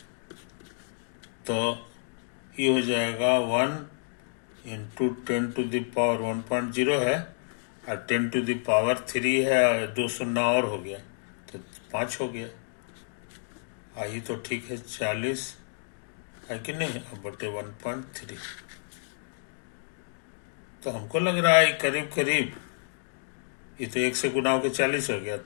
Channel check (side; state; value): right; silent; digital silence